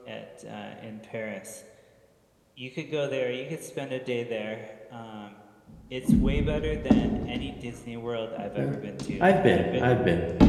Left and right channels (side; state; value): both; identical; correlation 1.00